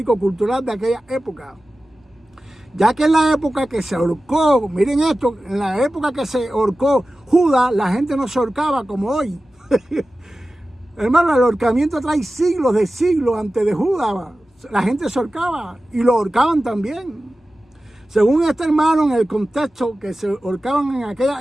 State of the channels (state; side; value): normal; both; correlation 0.95